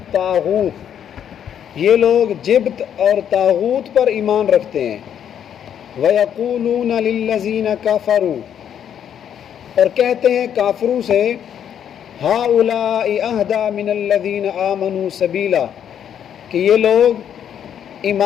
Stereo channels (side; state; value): right; quieter; 9.2 dB